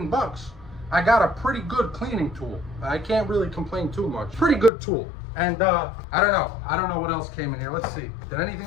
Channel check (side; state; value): right; drops out; at 4.7 s